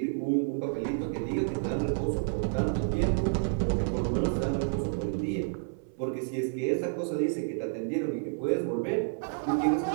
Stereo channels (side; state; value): left; silent; 58 dB below the other